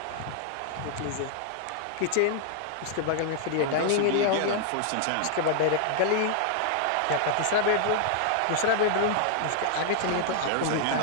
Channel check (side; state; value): both; different; correlation 0.00